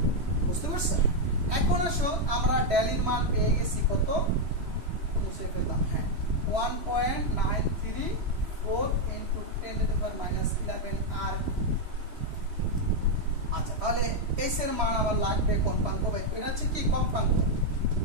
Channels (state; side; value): late; left; 3.1 ms